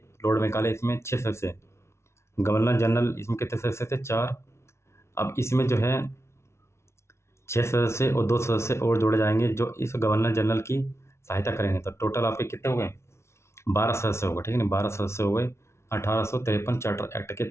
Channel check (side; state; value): right; late; 0.13 ms